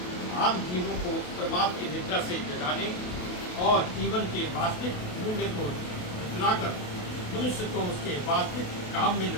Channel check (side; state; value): right; late; 28 ms